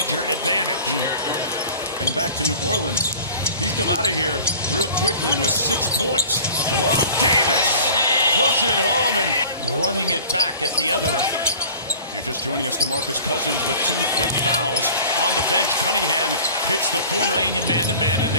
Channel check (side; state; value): both; inverted; correlation -0.44